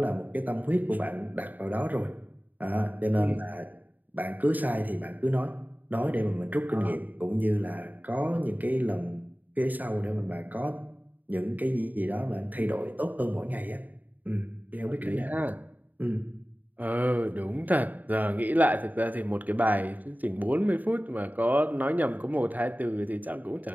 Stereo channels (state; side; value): late; left; 0.082 ms